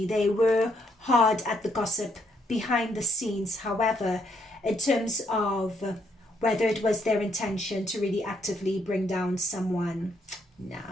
They were hard at the gossip behind the scenes. However, in terms of whether it was their intention to really actively bring down someone,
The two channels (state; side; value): normal; both; correlation 0.73